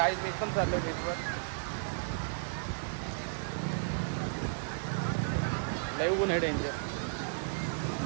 एकदम चाललोय बीचवर. लय ऊन आहे डेंजर.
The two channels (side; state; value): left; silent; 55 dB below the other